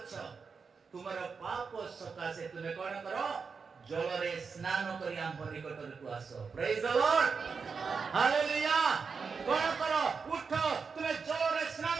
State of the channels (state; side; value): quieter; left; 5.3 dB